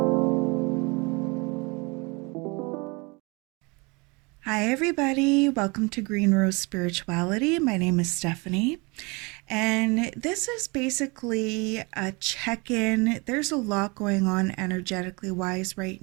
everybody. Welcome to Green Rose Spirituality. My name is Stephanie, and this is basically a check in. There's a lot going on energetically wise right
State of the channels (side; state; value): left; quieter; 28.0 dB